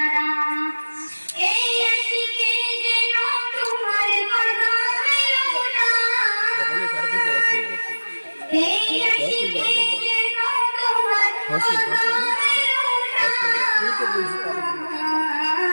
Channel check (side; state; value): both; inverted; correlation -1.00